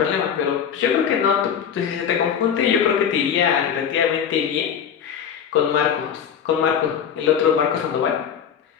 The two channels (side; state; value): right; quieter; 8.0 dB